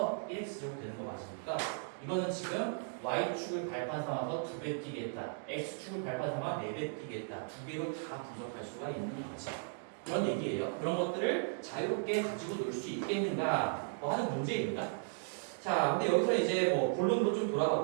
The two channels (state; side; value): silent; left; digital silence